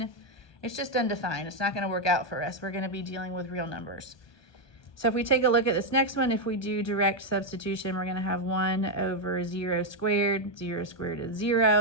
It's just undefined. It's not going to work out for us. We're going to be dealing with real numbers. So if we take a look at this next one, if we do direct substitution, we're going to have 1 over 0 squared. 0 squared is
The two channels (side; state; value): right; late; 1.2 ms